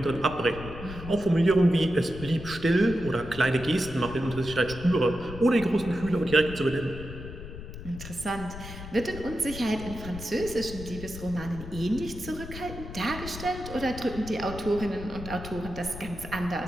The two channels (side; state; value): left; noise; rumble, 11 dB below the sound